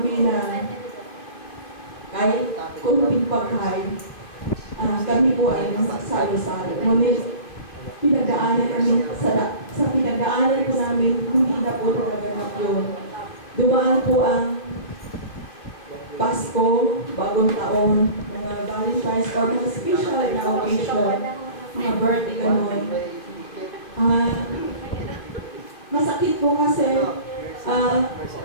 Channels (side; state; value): right; late; 2.6 ms